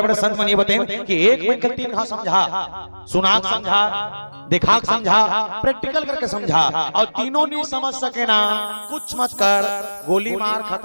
बड़े संत मन ये बताएं कि एक मिनट 3 गांव समझा, सुनाक समझा, दिखाक समझा, प्रैक्टिकल करके समझा, और तीनों नहीं समझ सके ना कुछ मत कर, गोली मार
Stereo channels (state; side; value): inverted; both; correlation -1.00